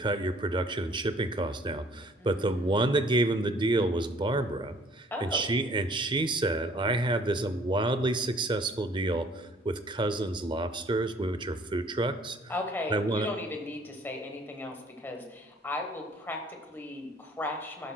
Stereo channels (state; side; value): normal; both; correlation 0.57